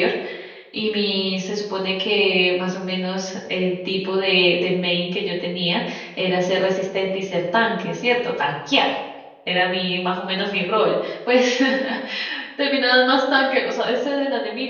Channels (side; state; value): both; identical; correlation 1.00